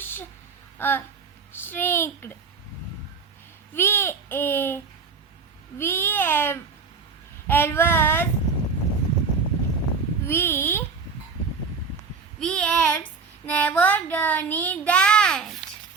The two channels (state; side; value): quieter; left; 5.1 dB